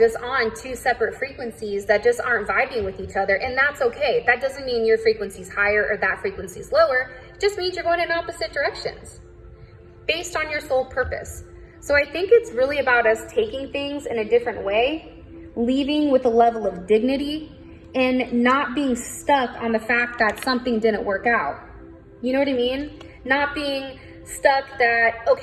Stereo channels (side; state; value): both; identical; correlation 1.00